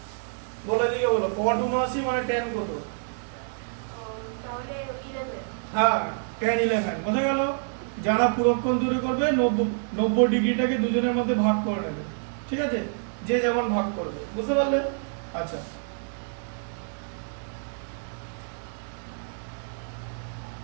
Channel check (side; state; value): left; silent; digital silence